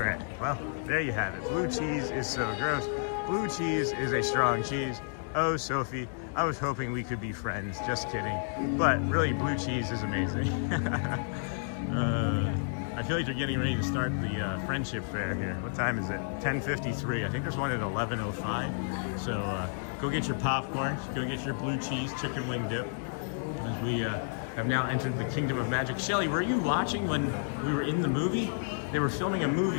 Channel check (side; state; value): right; silent; digital silence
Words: Well, there you have it. Blue cheese is so gross. Blue cheese is a strong cheese. Oh, Sophie, I was hoping we could be friends. Just kidding. But really, blue cheese is amazing. I feel like they're getting ready to start the friendship fair here. What time is it? 10:53. I think there's one at 11:05. So go get your popcorn. Go get your blue cheese chicken wing dip. As we have now entered the Kingdom of Magic. Shelly, were you watching when we were in the movie? They were filming a